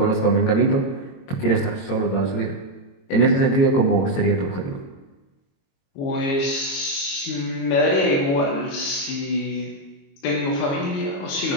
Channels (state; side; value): late; right; 22 ms